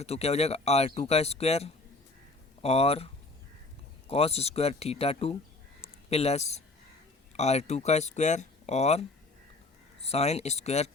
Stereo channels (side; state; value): right; quieter; 3.2 dB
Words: तो क्या हो जाएगा R2 का स्क्वायर और cos square theta 2 plus R2 का स्क्वायर और साइन स्क्वायर